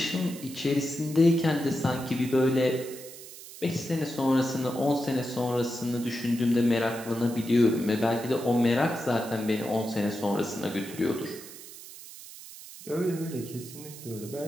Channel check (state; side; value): noise; right; hiss, 15 dB below the sound